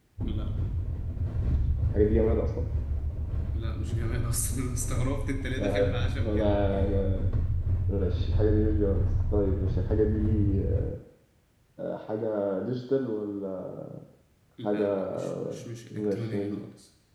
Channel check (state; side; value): identical; both; correlation 1.00